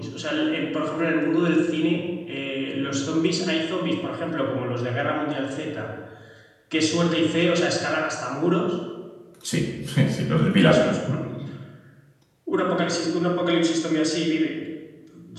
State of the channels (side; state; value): both; identical; correlation 1.00